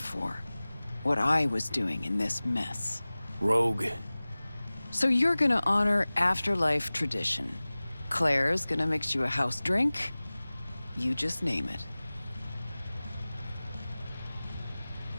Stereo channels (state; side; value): inverted; both; correlation -0.99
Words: What I was doing in this mess. Rogue. So you're gonna honor Afterlife tradition. Claire's gonna mix you a house drink. You just name it.